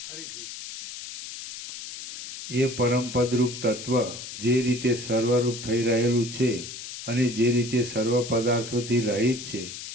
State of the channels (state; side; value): noise; left; hiss, 10 dB below the sound